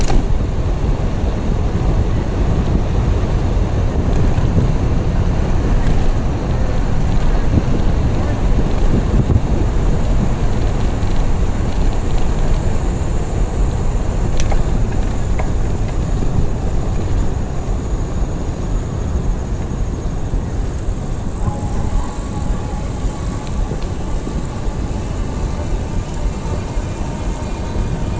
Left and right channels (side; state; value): both; identical; correlation 1.00